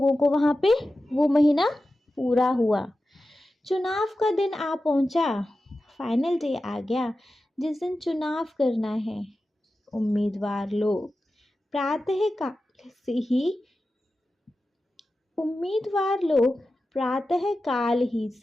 को वहाँ पे, वो महीना पूरा हुआ। चुनाव का दिन आ पहुँचा, फाइनल डे आ गया जिस दिन चुनाव करना है। उम्मीदवार लोग प्रातः काल ही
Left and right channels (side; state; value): both; normal; correlation 0.93